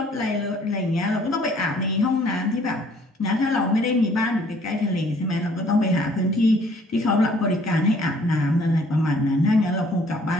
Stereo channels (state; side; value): normal; both; correlation 0.59